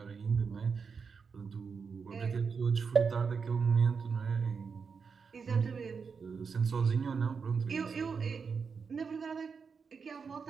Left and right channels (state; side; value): quieter; left; 5.6 dB